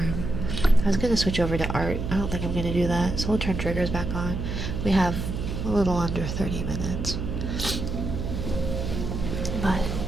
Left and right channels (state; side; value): noise; right; hum, 4 dB below the sound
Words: I was gonna switch over to art. I don't think I'm gonna do that, so we'll turn triggers back on. We have a little under 30 minutes. But